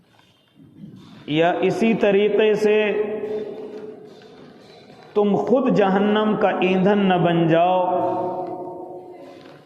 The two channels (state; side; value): identical; both; correlation 1.00